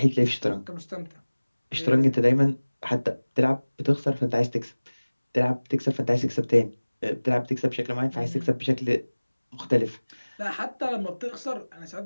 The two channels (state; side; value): inverted; both; correlation -1.00